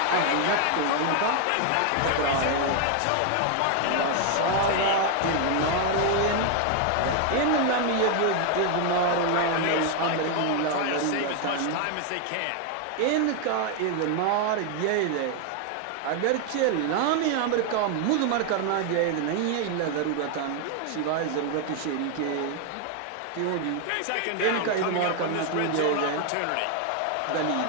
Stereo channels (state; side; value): different; both; correlation 0.01